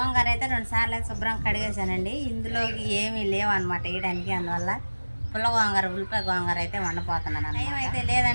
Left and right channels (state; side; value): inverted; both; correlation -1.00